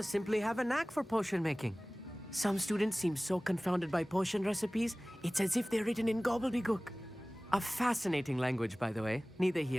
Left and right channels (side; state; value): both; normal; correlation 0.98